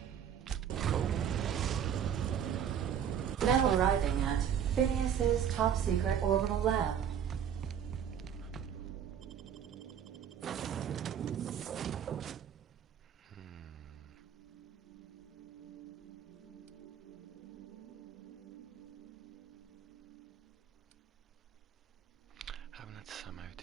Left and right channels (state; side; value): quieter; left; 8.7 dB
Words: Now arriving at Phineas's top-secret orbital lab. Haven't had Sam